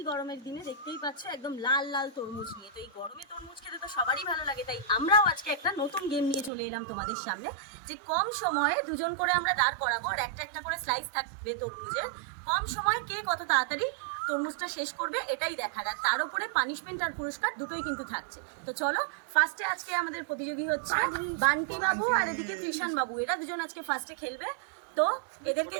গরমের দিনে দেখতেই পাচ্ছ একদম লাল লাল তরমুজ নিয়ে। তো এই গরমে তরমুজ খেতে তো সবারই ভালো লাগে, তাই আমরাও আজকে একটা নতুন গেম নিয়ে চলে এলাম তোমাদের সামনে, যে কম সময়ে দুজন করে আমরা দাঁড় করাবো আর একটা একটা করে স্লাইস থাকবে তরমুজের। কম সময়ে কে কত তাড়াতাড়ি তরমুজটা শেষ করবে এটাই দেখার, আর তার উপরে পানিশমেন্ট আর পুরস্কার দুটোই কিন্তু থাকছে। তো চলো, ফার্স্টে আজকে আমাদের প্রতিযোগী হচ্ছে বান্টি বাবু আর এদিকে কৃষাণ বাবু, এরা দুজন আজকে ফার্স্টে খেলবে। তো এদেরকে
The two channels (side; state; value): left; drops out; at 6.5 s